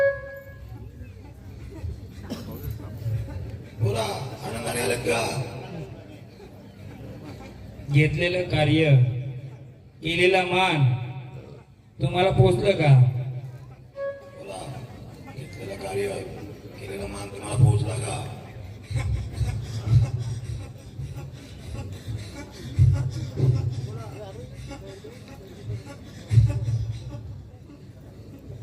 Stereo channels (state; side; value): identical; both; correlation 1.00